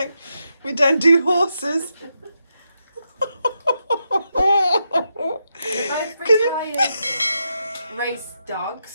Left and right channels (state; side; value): inverted; both; correlation -0.84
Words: we don't do horses. They're both retired race